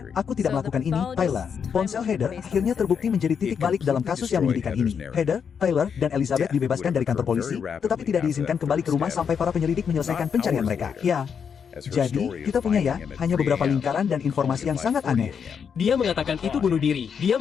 "Aku tidak melakukan ini, Tyler." Ponsel Heather akhirnya terbukti menjadi titik balik dalam kasus yang menyedihkan ini. Heather, Tyler, dan Elizabeth dibebaskan dari kantor polisi, tetapi tidak diizinkan kembali ke rumah sampai para penyelidik menyelesaikan pencarian mereka. Ya. Jadi, kita punya ya, hanya beberapa lingkaran dan informasi yang sangat aneh. Dia mengatakan itu bunuh diri. Dia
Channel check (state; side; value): quieter; right; 7.0 dB